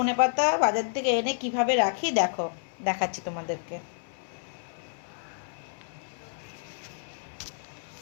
ধনেপাতা বাজার থেকে এনে কিভাবে রাখি দেখো, দেখাচ্ছি তোমাদেরকে।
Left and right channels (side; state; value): right; silent; 57 dB below the other